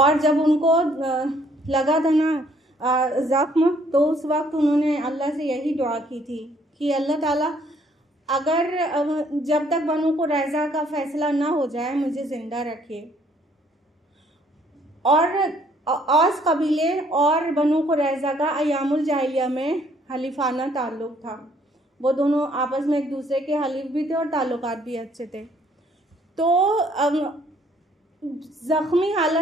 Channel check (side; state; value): both; normal; correlation 0.64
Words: जब उनको लगा था ना ज़ख्म, तो उस वक्त उन्होंने अल्लाह से यही दुआ की थी कि अल्लाह ताला अगर जब तक बनु कुरैज़ा का फ़ैसला ना हो जाए मुझे ज़िंदा रखे। और औस कबीले और बनु कुरैज़ा का अयामुल जाहिलिया में हलीफाना ताल्लुक़ था, वो दोनों आपस में एक दूसरे के हलीफ भी थे और ताल्लुकात भी अच्छे थे। तो ज़ख्मी